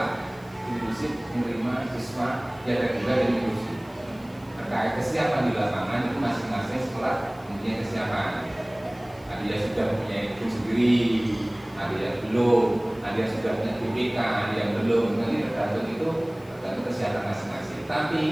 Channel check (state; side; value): noise; left; hiss, 27 dB below the sound